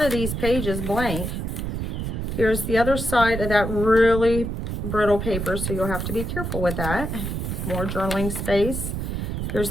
of these pages blank. Here's the other side of that really brittle paper, so you'll have to be careful with that. More journaling space. Here's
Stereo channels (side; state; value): right; noise; rumble, 3 dB below the sound